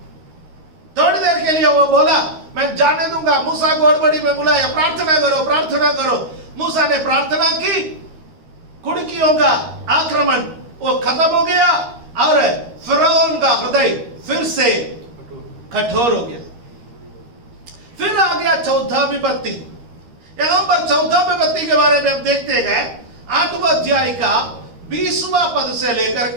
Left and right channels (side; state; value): left; late; 13 ms